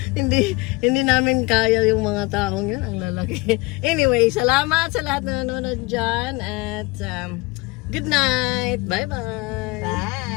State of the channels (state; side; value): quieter; right; 24.3 dB